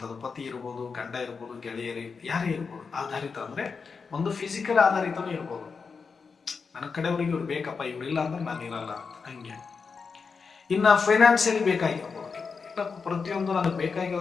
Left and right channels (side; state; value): right; quieter; 5.2 dB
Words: ಪತಿ ಇರ್ಬೋದು, ಗಂಡ ಇರ್ಬೋದು, ಗೆಳೆಯರಿ ಯಾರೇ ಇರ್ಬೋದು. ಆಧಾರಿತ ಅಂದ್ರೆ ಒಂದು ಫಿಸಿಕಲ್ ಆಧಾರಿತನೂ ಇರ್ಬೋದು, ನನ್ನ ಕಡೆಯವ್ರಿಗೆ ಇವ್ರು ಬೇಕಪ್ಪ, ಇವ್ರಿಲ್ಲ ಅಂದ್ರೆ ನಾನು ಇರಲ್ಲ ಅಂತ, ಹಂಗೆ. ಇನ್ನ ಫೈನಾನ್ಸಿಯಲಿ ಬೇಕಾಗಿರ್ಬೋದು, ಇಲ್ಲ ಪ್ರತಿಯೊಂದು ನನಗೆ